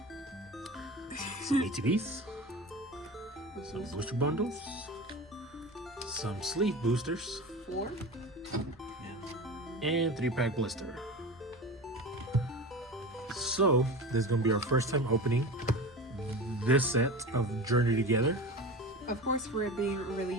Some ATVs, some booster bundles, some sleeve boosters, 4. and 3-pack blister. So this is gonna be our first time opening this set of Journey Together. Of course, we're being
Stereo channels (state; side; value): normal; both; correlation 0.30